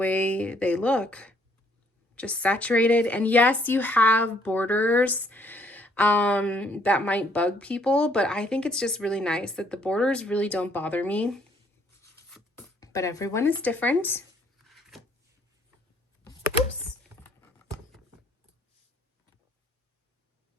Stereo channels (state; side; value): normal; both; correlation 0.65